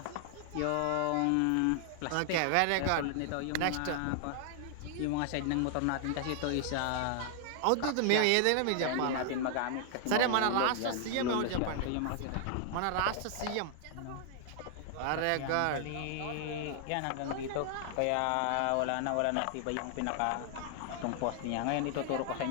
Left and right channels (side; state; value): both; different; correlation 0.00